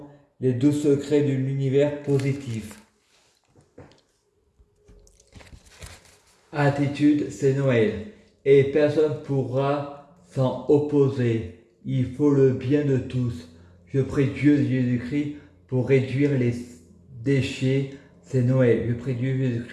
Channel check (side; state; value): both; identical; correlation 1.00